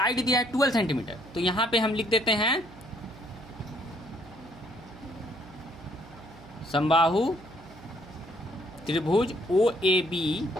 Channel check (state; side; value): noise; right; hum, 20 dB below the sound